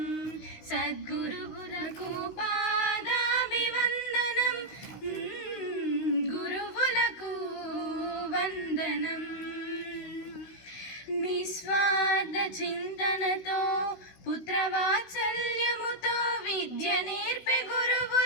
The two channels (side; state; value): right; late; 16 ms